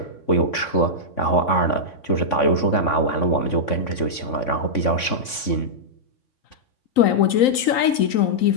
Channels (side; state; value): right; late; 3.5 ms